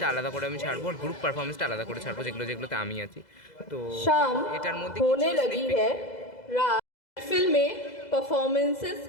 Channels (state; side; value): late; right; 2.0 ms